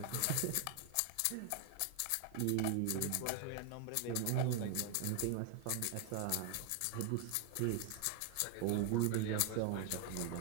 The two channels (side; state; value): both; different; correlation 0.01